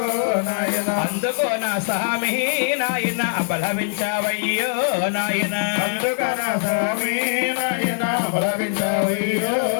నాయన అందుకో నా స్వామి నాయన అబలవించావయ్యో నాయన అందుకో నా స్వామి నాయన అబలవించావయ్యో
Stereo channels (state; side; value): silent; right; 60 dB below the other